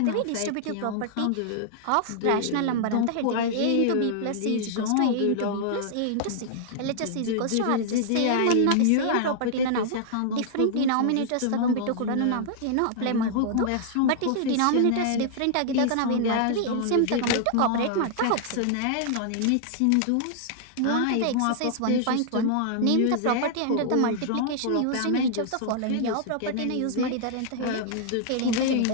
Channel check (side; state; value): both; different; correlation -0.01